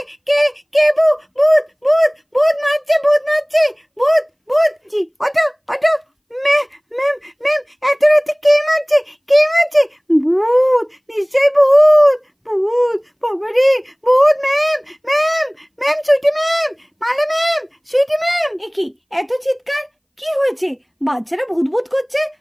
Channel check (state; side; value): identical; both; correlation 1.00